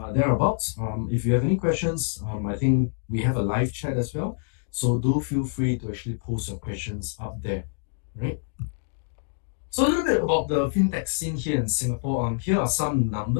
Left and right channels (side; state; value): right; silent; digital silence